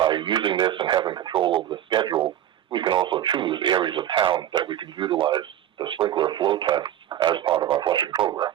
using this and having control over the schedule, we can also choose areas of town that we can utilize the sprinkler flow tests as part of our flushing program.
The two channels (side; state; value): left; quieter; 11.3 dB